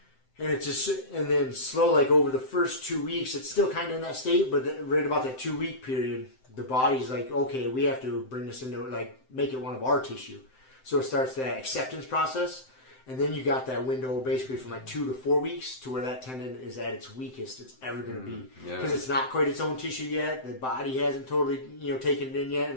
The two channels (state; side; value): late; right; 7.8 ms